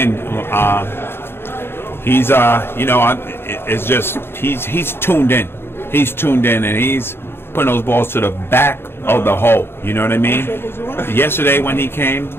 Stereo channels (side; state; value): right; late; 0.11 ms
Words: He's it's just he's tuned in. He's tuned in and he's putting those balls to the back of the hole. You know what I mean? Yesterday when he came,